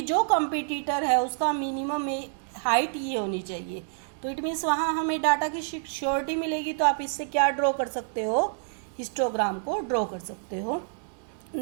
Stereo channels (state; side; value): silent; left; digital silence